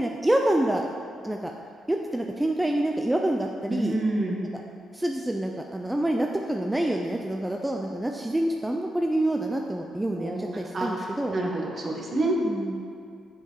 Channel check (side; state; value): both; normal; correlation 0.91